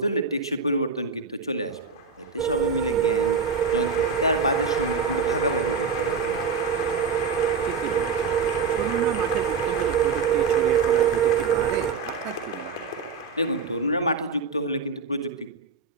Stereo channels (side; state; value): left; quieter; 5.2 dB